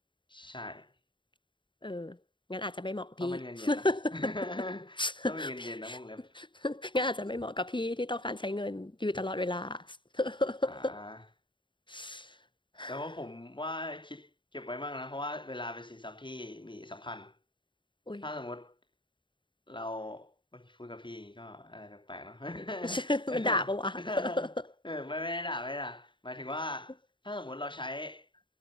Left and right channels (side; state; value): right; late; 0.23 ms